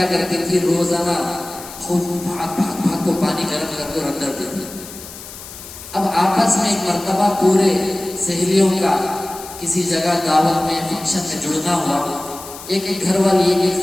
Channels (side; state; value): left; noise; hiss, 14 dB below the sound